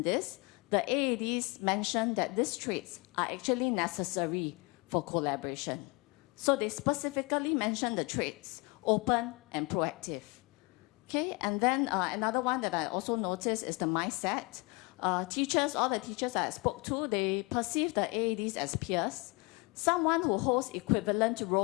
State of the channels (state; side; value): quieter; right; 27.8 dB